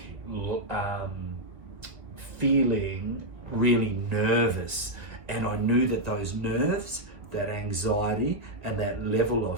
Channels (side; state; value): left; late; 1.9 ms